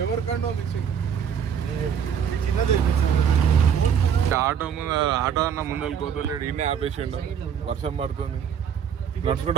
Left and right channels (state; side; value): quieter; left; 7.9 dB